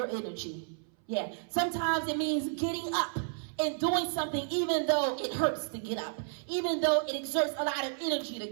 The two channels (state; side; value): silent; left; 57 dB below the other